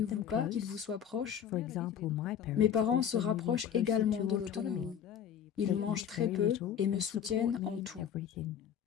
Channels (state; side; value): quieter; right; 8.7 dB